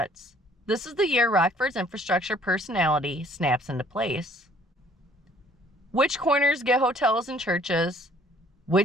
this is the year Rockford's infrastructure personality snaps into place. Which corners get hotels and churches?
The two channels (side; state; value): both; normal; correlation 0.58